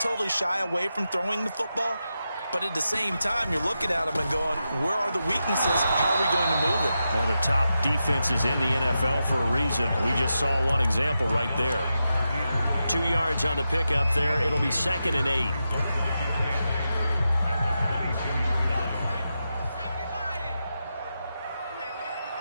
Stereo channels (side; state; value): both; inverted; correlation -0.88